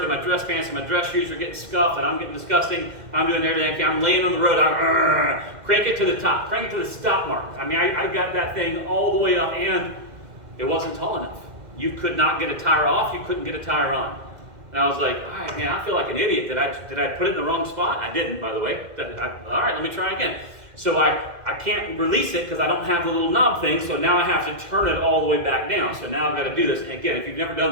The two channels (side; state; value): left; late; 2.1 ms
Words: and my dress pants, and my dress shoes are getting scuffed, and I'm getting disgusting. I'm doing everything. I'm laying on the road. I'm crank it to the top. Crank it to the stop mark. I mean, I got that thing all the way up, and it wasn't tall enough. You could not get a tire off. You couldn't get a tire on. And I was like, all right, man, I feel like an idiot. Did I put it in the wrong spot? I didn't, by the way. All right, let me try again. So I can't release it because I don't have the little knob thing, so now I have to turn it all the way back down. So now I've got to do this. And again, if you've never done